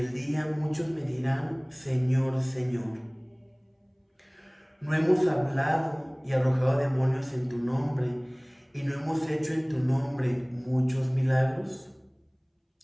día muchos me dirán: Señor, Señor, ¿no hemos hablado y arrojado demonios en tu nombre, y no hemos hecho en tu nombre muchos milagros?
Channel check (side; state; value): both; identical; correlation 1.00